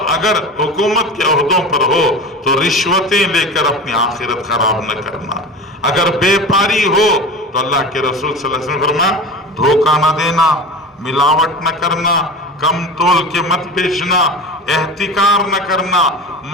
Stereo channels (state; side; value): normal; both; correlation 0.31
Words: اگر حکومت کے عہدوں پر ہو تو رشوتیں لے کر اپنی آخرت خراب نہ کرنا، اگر بے پاری ہو تو اللہ کے رسول صلی اللہ علیہ وسلم نے فرمایا دھوکہ نہ دینا، ملاوٹ نہ کرنا، کم تول کے مت بیچنا، احتکار نہ کرنا،